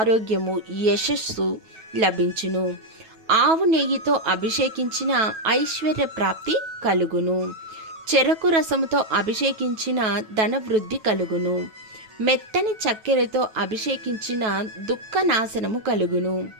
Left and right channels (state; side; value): late; left; 9.2 ms